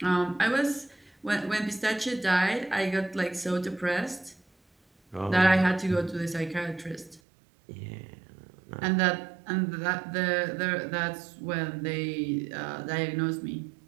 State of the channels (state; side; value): drops out; left; at 7.2 s